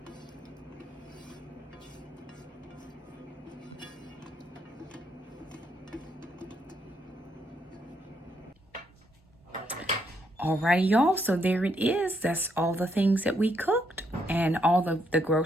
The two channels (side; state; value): both; normal; correlation 0.75